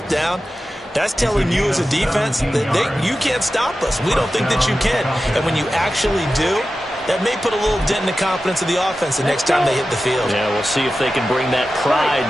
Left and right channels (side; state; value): both; normal; correlation 0.93